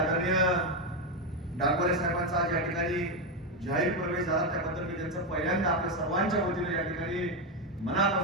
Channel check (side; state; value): both; normal; correlation 0.08